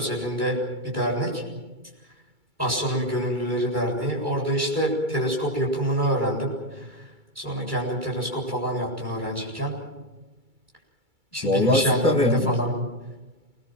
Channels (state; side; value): late; left; 2.3 ms